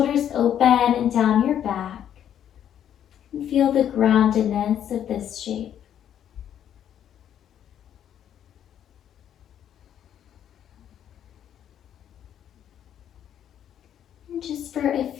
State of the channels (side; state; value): right; quieter; 9.9 dB